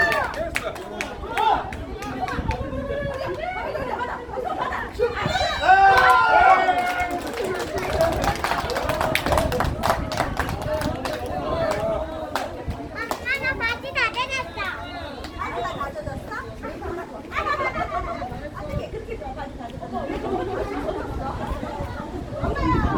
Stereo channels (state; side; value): identical; both; correlation 1.00